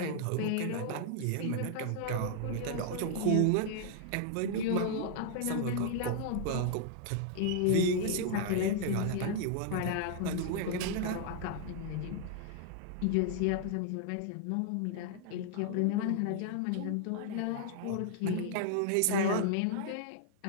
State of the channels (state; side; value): different; both; correlation -0.01